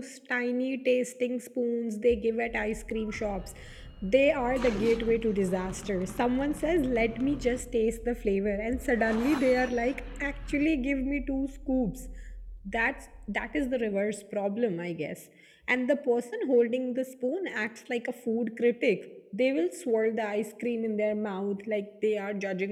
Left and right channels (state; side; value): identical; both; correlation 1.00